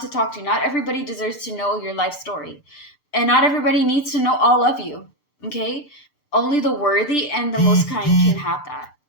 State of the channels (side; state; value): right; late; 7.7 ms